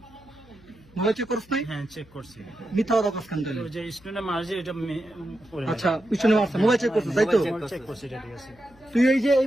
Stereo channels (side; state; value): left; noise; hum, 27 dB below the sound